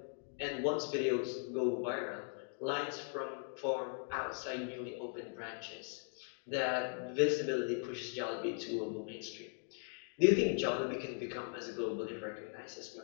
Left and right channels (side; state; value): right; silent; 52 dB below the other